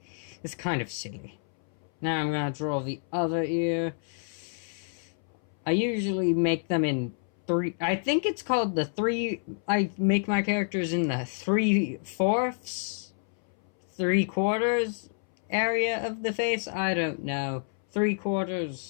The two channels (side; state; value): right; silent; 59 dB below the other